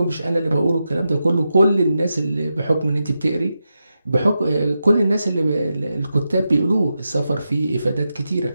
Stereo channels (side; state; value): both; inverted; correlation -0.88